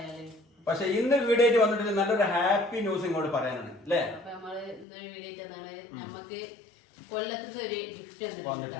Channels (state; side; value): drops out; right; at 4.9 s